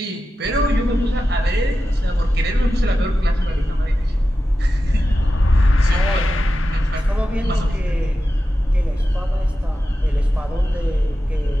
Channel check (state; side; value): normal; both; correlation 0.92